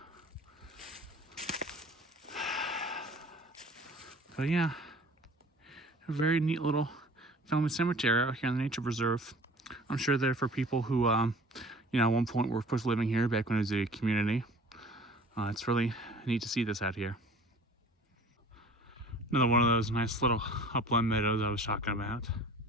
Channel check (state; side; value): normal; both; correlation 0.46